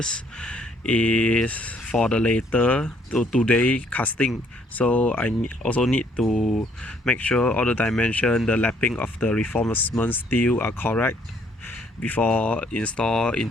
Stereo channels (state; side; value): normal; both; correlation 0.65